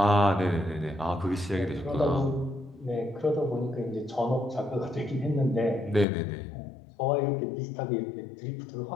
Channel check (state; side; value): drops out; right; at 6.1 s